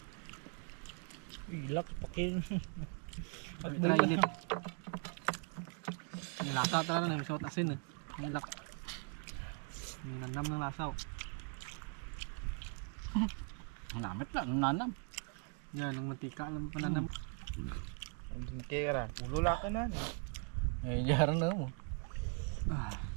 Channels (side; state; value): left; quieter; 36.9 dB